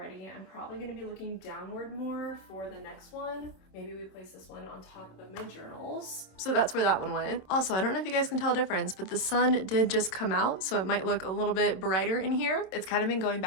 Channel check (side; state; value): right; late; 27 ms